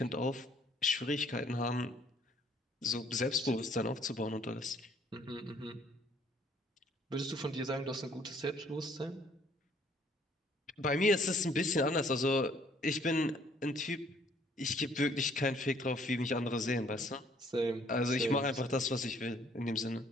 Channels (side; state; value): both; normal; correlation 0.62